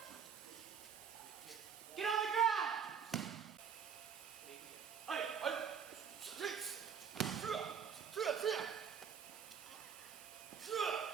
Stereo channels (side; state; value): left; quieter; 7.2 dB